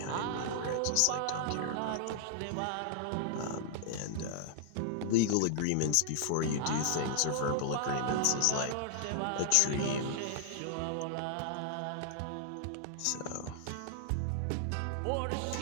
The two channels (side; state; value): both; different; correlation -0.01